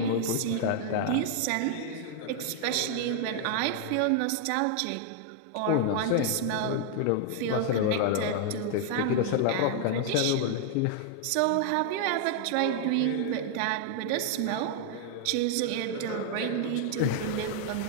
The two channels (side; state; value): both; different; correlation 0.00